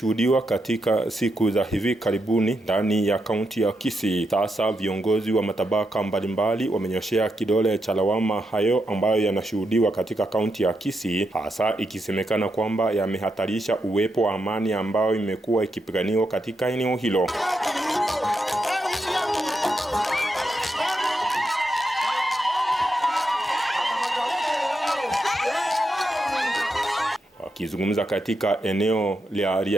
katika siku za hivi karibuni ndani ya kaunti ya Kisii, sasa viongozi wa matabaka mbalimbali wamenyoshea kidole cha lawama hayo ambayo yanashuhudiwa katika kaunti ya Kisii, hasa ikisemekana kwamba yamehatarisha uwepo wa amani ambayo imekuwa ikipiganiwa katika eneo hilo. Akizungumza katika eneo la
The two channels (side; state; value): both; normal; correlation 0.84